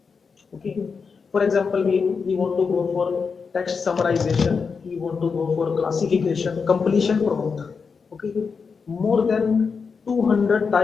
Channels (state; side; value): quieter; right; 5.4 dB